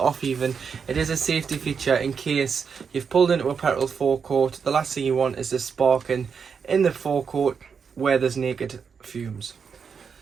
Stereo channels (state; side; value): quieter; left; 6.2 dB